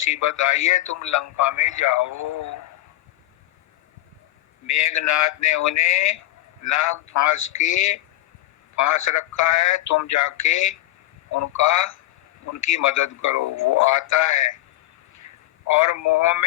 आई है, तुम लंका में जाओ। मेघनाथ ने उन्हें नाग फांस रखा है, तुम जाके उनकी मदद करो। वो आता है और मोह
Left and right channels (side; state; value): right; quieter; 15.8 dB